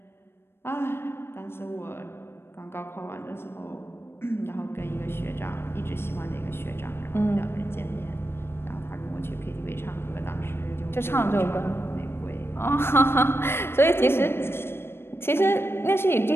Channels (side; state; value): right; late; 0.12 ms